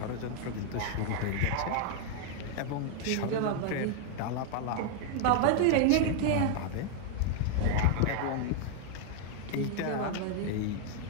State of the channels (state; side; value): different; both; correlation 0.00